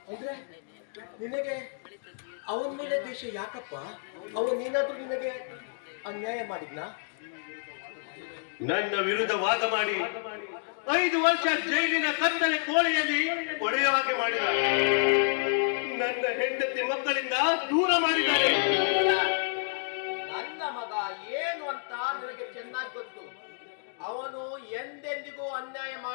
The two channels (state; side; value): silent; right; digital silence